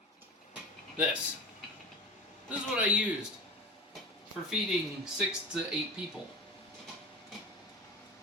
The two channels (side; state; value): both; normal; correlation 0.32